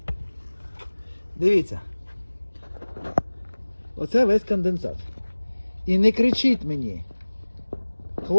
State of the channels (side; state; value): both; inverted; correlation -1.00